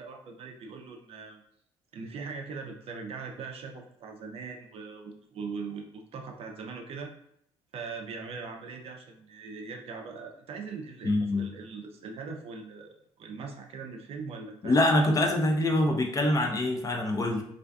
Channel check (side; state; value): both; normal; correlation 0.65